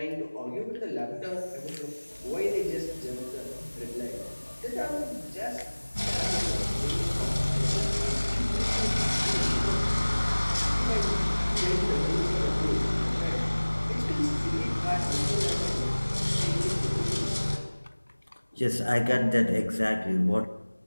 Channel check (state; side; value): inverted; both; correlation -1.00